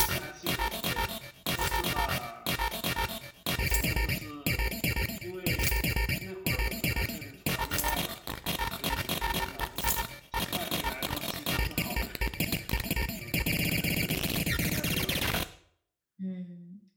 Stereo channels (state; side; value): identical; both; correlation 1.00